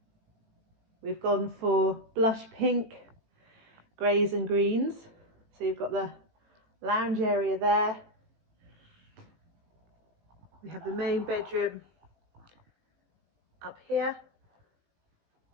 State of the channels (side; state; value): left; late; 18 ms